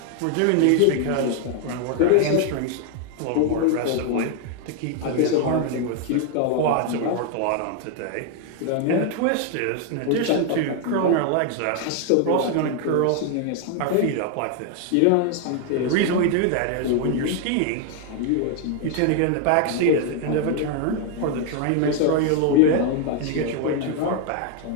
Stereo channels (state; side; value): different; both; correlation 0.00